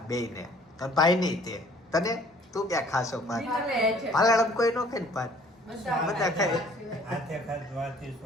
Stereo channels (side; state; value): both; normal; correlation 0.56